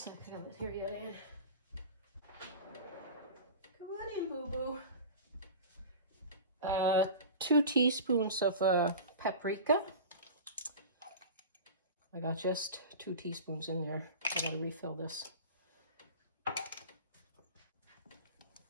I got it here yet, Ann. Come on in, boo-boo. 2 teaspoons of paprika. I got just 2 teaspoons in there. I gotta refill this.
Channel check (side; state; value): both; inverted; correlation -0.34